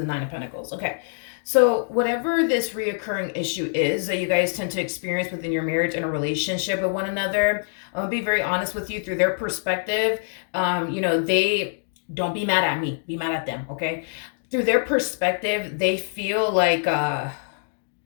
Nine of Pentacles. Okay, so whatever this reoccurring issue is that you guys tend to experience within your marriage and a relationship with one another, I'm gonna be very honest with you, through their perspective, you know, they don't be mad at me, be mad at them, okay? Through their perspective, they feel like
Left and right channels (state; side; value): silent; right; digital silence